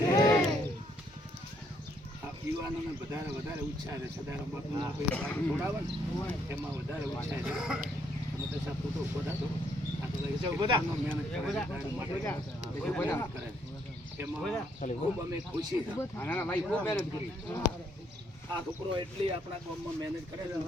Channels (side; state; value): both; normal; correlation 0.71